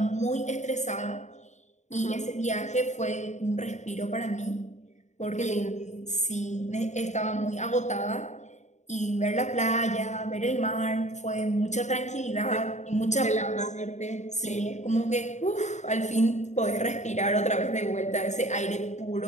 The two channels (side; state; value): right; late; 0.34 ms